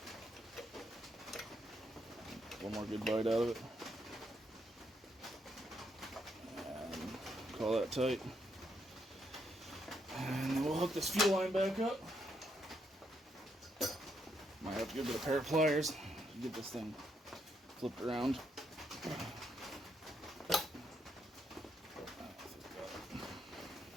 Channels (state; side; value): normal; both; correlation 0.76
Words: One more good bite out of it. And call that tight. And then we'll hook this fuel line back up. Might have to go get a pair of pliers to get this thing flipped around.